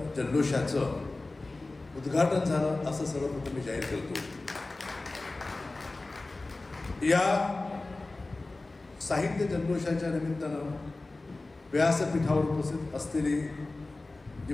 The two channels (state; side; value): quieter; right; 3.2 dB